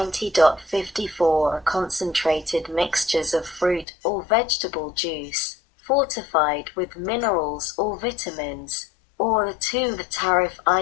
are concentrated mixtures of fruit or vegetable juice, fortified with minerals or vitamins, or 2. The tariff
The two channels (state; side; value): drops out; right; at 3.9 s